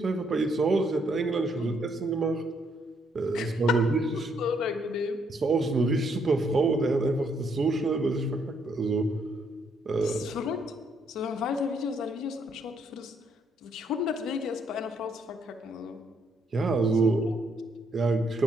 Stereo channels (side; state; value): both; normal; correlation 0.72